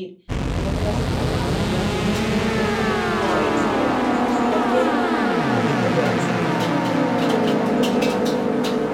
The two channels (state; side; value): identical; both; correlation 1.00